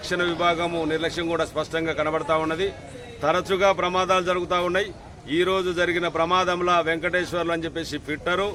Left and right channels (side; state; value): both; identical; correlation 1.00